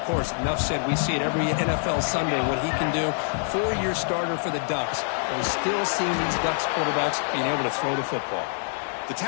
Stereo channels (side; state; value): right; silent; digital silence